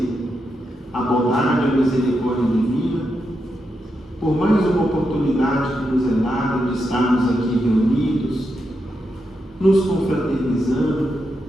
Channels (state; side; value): normal; both; correlation 0.85